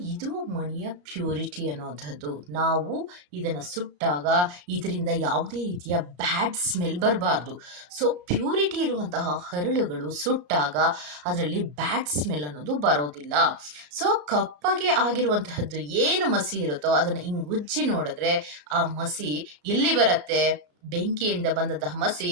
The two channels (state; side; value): late; left; 34 ms